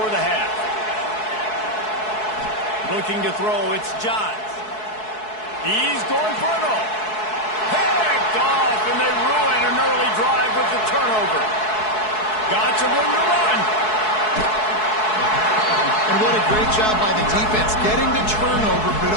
the half. Looking to throw, it's Johns. He's going for it all. Picked off, and they ruin an early drive with the turnover. Got some room to run. And what a great job by the defense, getting the turnover, but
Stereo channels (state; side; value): late; right; 4.7 ms